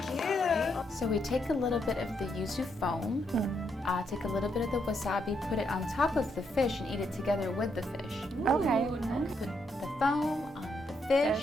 about. you. So we take a little bit of the yuzu foam, take a little bit of the wasabi, put it on top of the fish and eat it together with the fish. Okay. Put the foam on the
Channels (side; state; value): both; normal; correlation 0.78